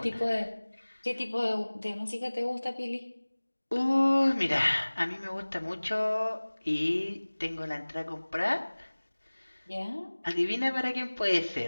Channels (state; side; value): inverted; both; correlation -1.00